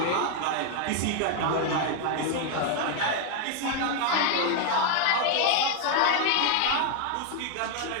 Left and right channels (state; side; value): different; both; correlation 0.00